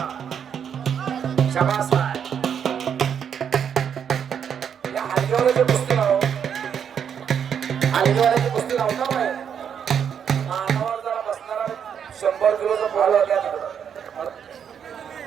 शाबास आहे. या हलगीवाल्याची कुस्ती लाव. हलगीवाल्याची कुस्ती लावता बाय. मानावर जरा बसणारा 100 किलोचा बॉल होत्या तिकडं.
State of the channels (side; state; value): left; quieter; 8.0 dB